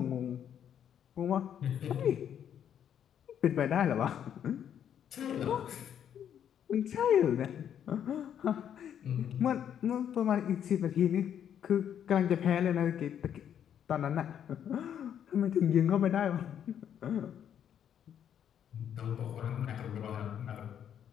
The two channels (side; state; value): right; quieter; 9.2 dB